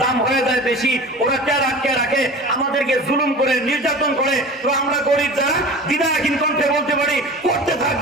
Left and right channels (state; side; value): normal; both; correlation 0.36